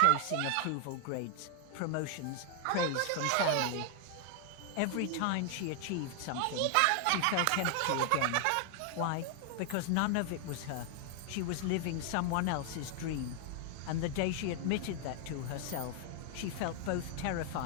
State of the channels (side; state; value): both; different; correlation 0.00